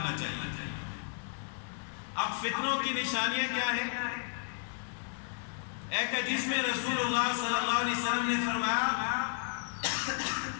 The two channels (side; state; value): right; silent; 56 dB below the other